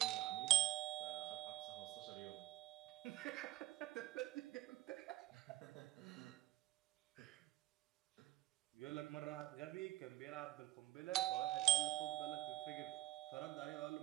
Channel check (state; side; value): quieter; left; 16.5 dB